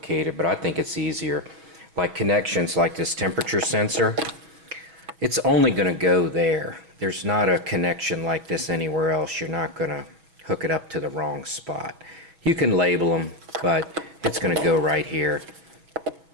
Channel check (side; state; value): left; late; 6.1 ms